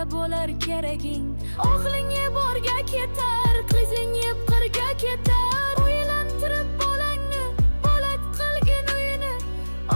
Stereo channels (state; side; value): inverted; both; correlation -1.00